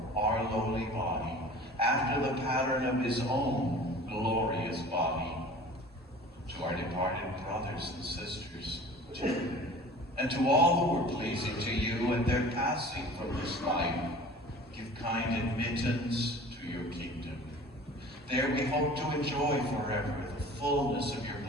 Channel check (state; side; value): normal; both; correlation 0.43